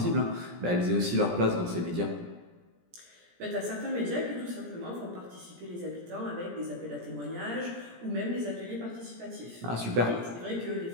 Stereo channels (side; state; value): left; late; 17 ms